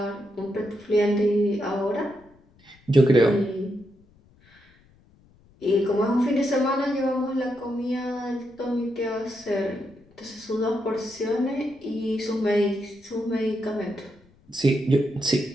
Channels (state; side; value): noise; left; rumble, 30 dB below the sound